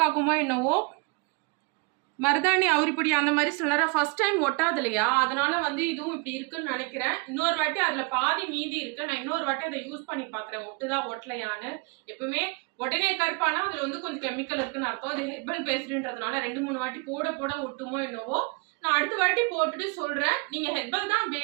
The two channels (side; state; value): left; quieter; 30.7 dB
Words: ஆகுமோ என்னவோ. மருதாணி அவுரிப்பொடி அந்த மாதிரி சில ஃபர்ஸ்ட் டைம் ஒட்டாது இல்லையா, அதனால வந்து இதுவும் இப்படி இருக்குன்னு நினைக்கிறேன். இன்னொரு வாட்டி அதில் பாதி மீதி இருக்கு. நான் இன்னொரு வாட்டி அதை யூஸ் பண்ணி பார்க்குறேன், ஒட்டுதா ஒட்டலையான்னு. எப்பவுமே உடனே கருப்பானா அதில் வந்து கொஞ்சம் கெமிக்கல் இருக்குன்னு அர்த்தம். அது ஹெர்பல் பேஸ்டுன்றதுனால 2-3 வாட்டி போட போட ஒட்டுமோ என்னவோ. நான் அடுத்த வாட்டி போட்டுட்டு சொல்கிறேன். நீங்கள் ஹெர்பல் தான்